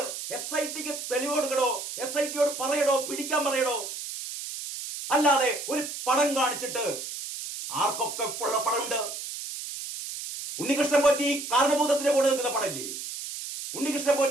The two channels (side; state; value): right; noise; hiss, 7 dB below the sound